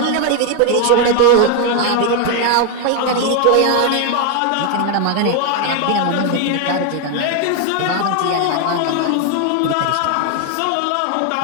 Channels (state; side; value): different; both; correlation 0.01